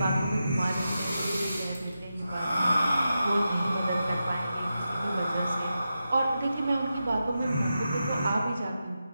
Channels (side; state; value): both; inverted; correlation -0.89